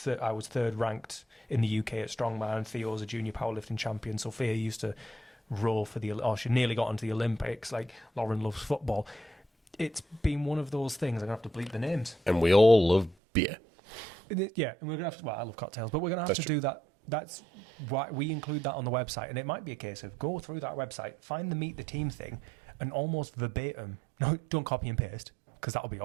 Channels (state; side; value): drops out; left; at 13.2 s